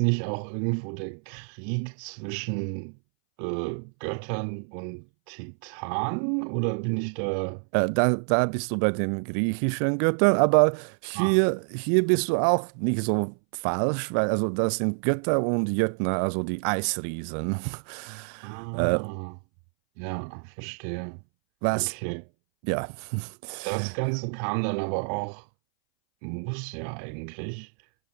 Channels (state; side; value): silent; left; 60 dB below the other